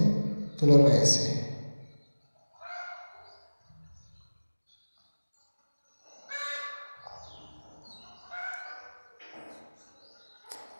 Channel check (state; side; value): inverted; both; correlation -1.00